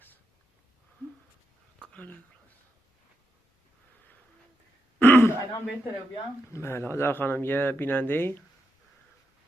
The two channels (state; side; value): normal; both; correlation 0.84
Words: الان بهتره بیام. بله هاجر خانم یه بیننده